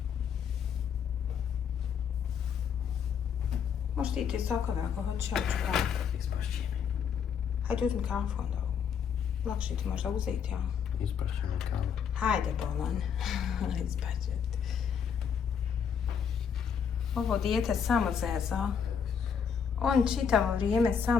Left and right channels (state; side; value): quieter; right; 7.2 dB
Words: Možeš ti i ti sokove ako hoćeš, ja ću praviti. Ispašće mi. Hajde, uzmi kafu onda. Lakše ti možda uzeti, ja. Ispašće mi kavu. Hajde, bolan. Ispašće ti. Ovo dijete samo zeza. On čitavo vrijeme